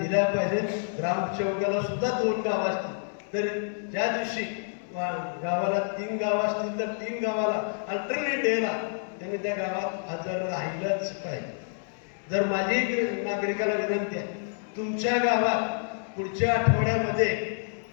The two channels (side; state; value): right; silent; 59 dB below the other